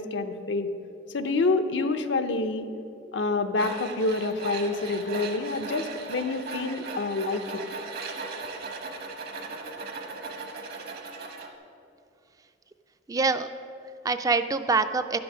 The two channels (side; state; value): both; normal; correlation 0.10